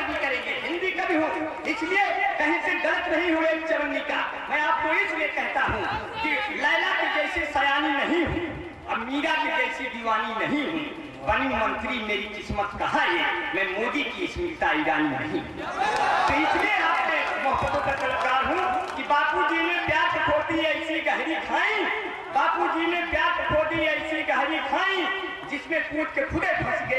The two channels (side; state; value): both; identical; correlation 1.00